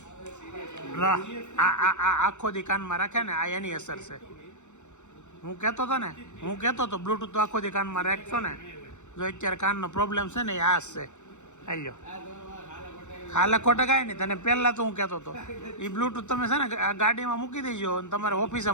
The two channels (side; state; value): right; late; 0.84 ms